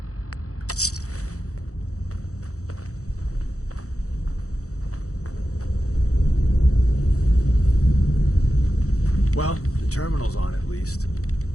Well, the terminal's on at least.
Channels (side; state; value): right; late; 0.65 ms